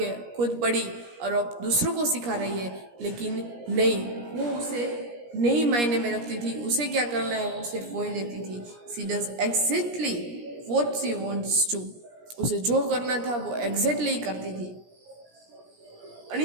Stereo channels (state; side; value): late; left; 17 ms